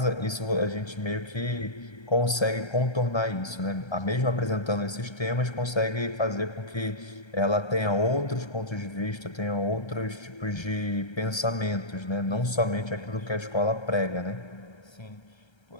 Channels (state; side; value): late; right; 1.3 ms